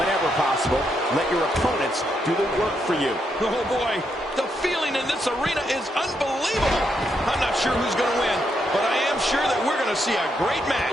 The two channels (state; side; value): normal; both; correlation 0.79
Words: possible, let your opponents do the work for you. Oh boy, the feeling in this arena is unbelievable. I'm not sure who's going to win, but I am sure that we're going to see a great